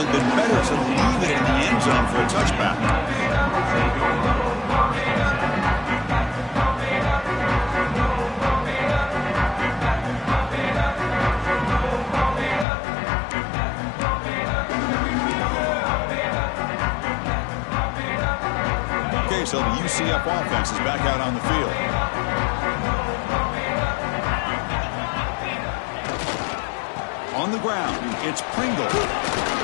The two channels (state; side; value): drops out; right; at 12.7 s